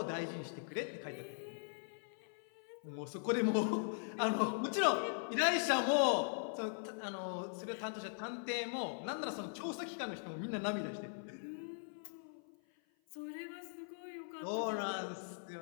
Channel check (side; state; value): right; silent; 51 dB below the other